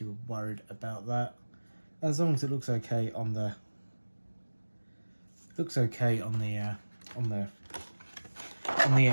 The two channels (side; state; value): both; inverted; correlation -1.00